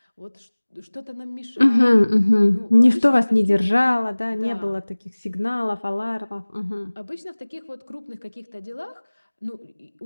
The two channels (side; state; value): both; inverted; correlation -1.00